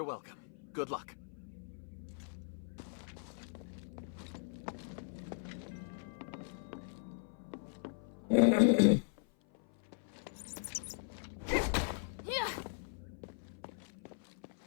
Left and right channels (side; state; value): right; silent; 52 dB below the other